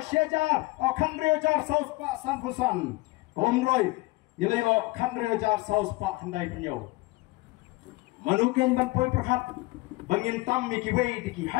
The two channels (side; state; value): right; quieter; 22.4 dB